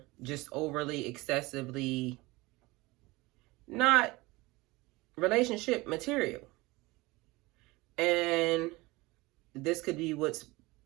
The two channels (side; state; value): left; quieter; 22.0 dB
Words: just overly, excessively not relationship material. And this could be what's